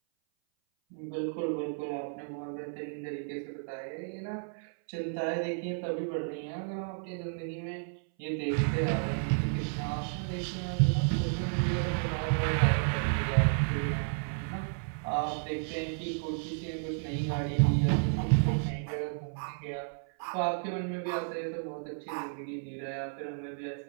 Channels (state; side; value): silent; left; 56 dB below the other